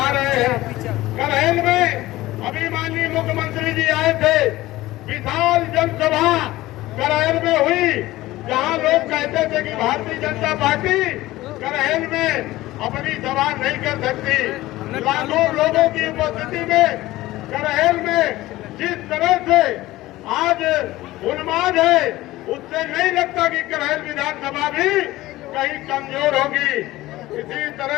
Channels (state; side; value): quieter; right; 17.4 dB